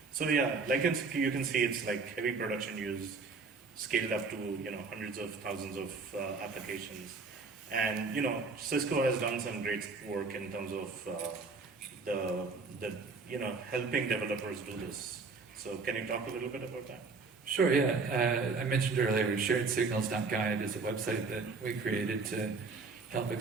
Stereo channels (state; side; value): quieter; left; 4.4 dB